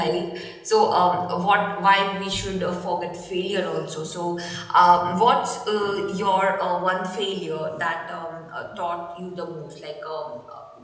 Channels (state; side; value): identical; both; correlation 1.00